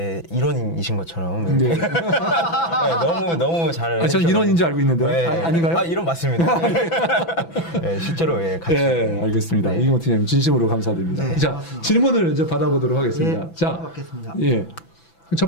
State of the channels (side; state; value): right; late; 6.0 ms